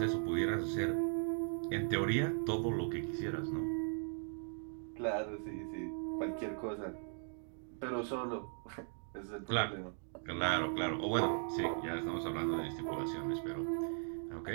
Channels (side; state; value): left; silent; 52 dB below the other